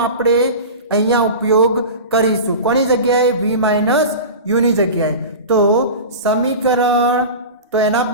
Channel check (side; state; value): both; inverted; correlation -0.31